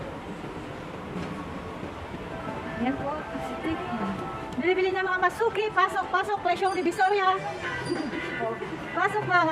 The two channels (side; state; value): both; identical; correlation 1.00